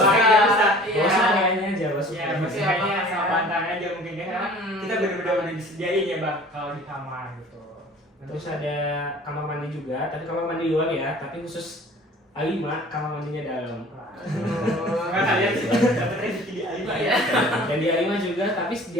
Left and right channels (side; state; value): both; normal; correlation 0.47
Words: lemari nggak usah. Iya. Bawa semuanya aja, bawa Ya, semuanya. maksudnya Iya, sama iya. bantalnya aja mungkin ya, karena kita benar-benar udah disediain ya bang kalau di kamar gitu. Terus ada kamar mandi juga, tapi kamar mandi luar ya, tapi khusus A5, kamar mandinya dalam. Karena kalian sih dapat rezeki di A5 ya. Iya. Dan di A5 juga, tapi di